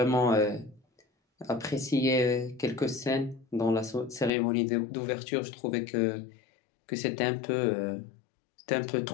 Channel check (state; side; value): drops out; right; at 4.3 s